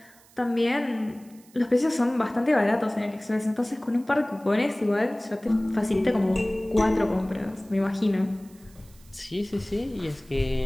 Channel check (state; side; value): noise; right; hiss, 27 dB below the sound